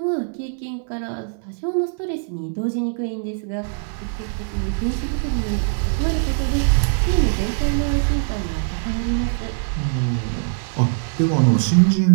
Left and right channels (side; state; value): left; silent; 65 dB below the other